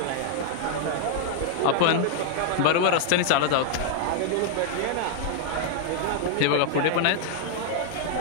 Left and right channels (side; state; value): both; different; correlation -0.01